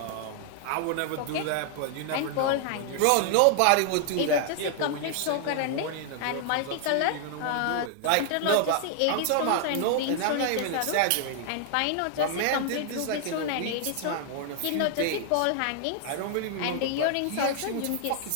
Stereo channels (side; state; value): both; different; correlation 0.00